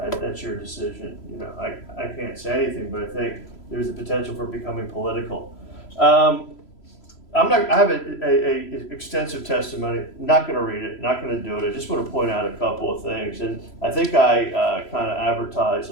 your decision. You know, I can't say anything, but I think there's the potential for becoming political. I have a extensive testimony. Not going to read it. Not going to do it. I just want to point out a couple of things. And I think I kind of advertised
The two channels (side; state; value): right; late; 3.0 ms